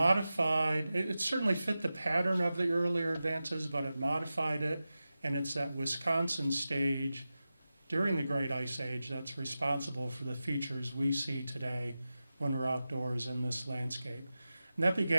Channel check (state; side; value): inverted; both; correlation -0.94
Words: it certainly fit the pattern of the earlier advances, but it modified it, and it's that Wisconsin stage during the Great Ice Age that's responsible for the features we see today when we're outdoors in this landscape. And that